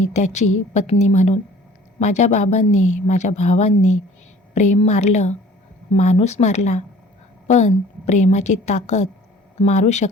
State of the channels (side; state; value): both; normal; correlation 0.50